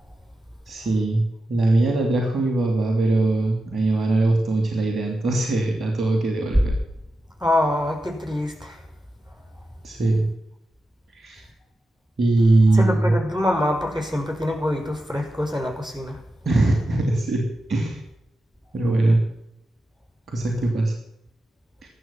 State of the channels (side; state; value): both; normal; correlation 0.91